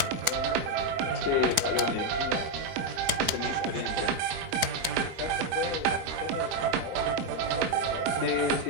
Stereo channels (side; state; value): left; late; 4.5 ms